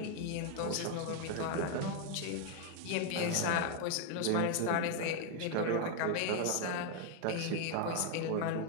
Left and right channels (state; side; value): different; both; correlation 0.01